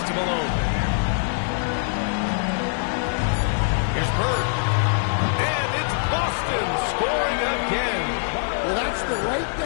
to Malone. Here's Bird. And it's Boston scoring again. Well, that's the right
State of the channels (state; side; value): silent; right; digital silence